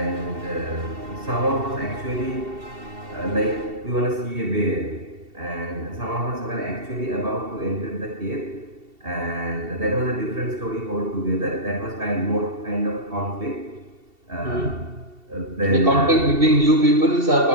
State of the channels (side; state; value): left; late; 2.7 ms